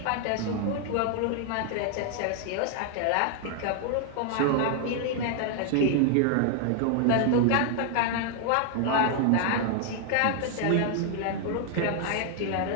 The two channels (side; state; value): both; different; correlation 0.00